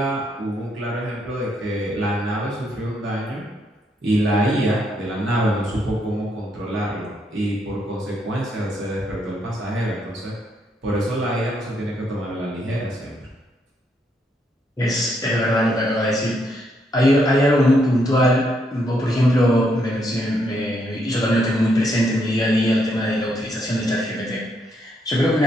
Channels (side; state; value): both; normal; correlation 0.75